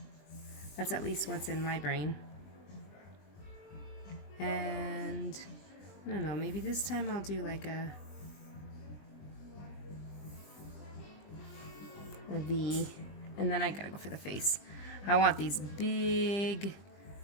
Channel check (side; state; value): right; late; 20 ms